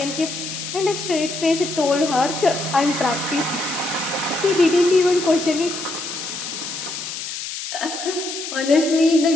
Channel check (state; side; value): noise; left; hiss, 7 dB below the sound